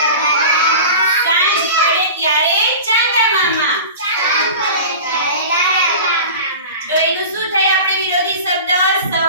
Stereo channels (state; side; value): inverted; both; correlation -0.34